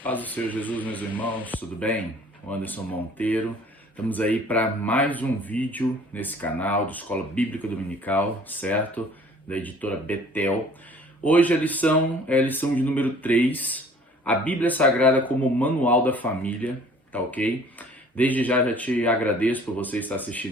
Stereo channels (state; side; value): normal; both; correlation 0.52